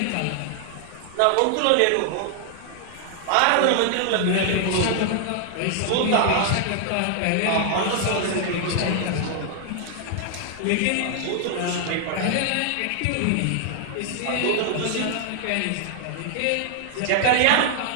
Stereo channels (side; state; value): both; different; correlation 0.00